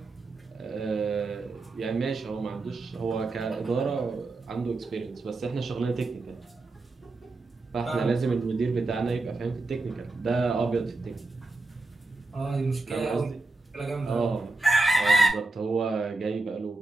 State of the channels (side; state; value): left; quieter; 3.4 dB